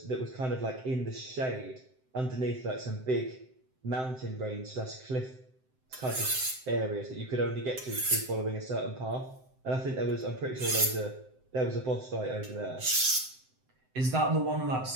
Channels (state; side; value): late; left; 7.8 ms